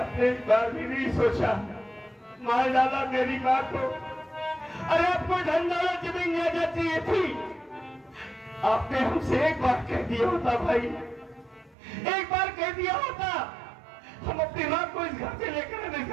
एक बार भी नहीं सोचा, मार डाला मेरी माँ को। अरे आपको धन दौलत जमीन जायदाद चाहिए थी, आपने हमसे एक बार कह दिया होता भाई, एक बार कह दिया होता, हम अपनी माँ को इस घर से लेकर आने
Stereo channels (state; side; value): drops out; left; at 11.8 s